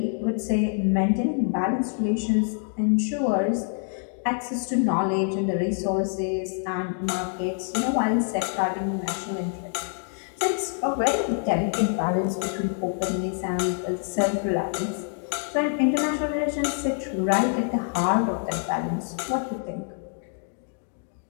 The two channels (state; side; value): silent; right; 56 dB below the other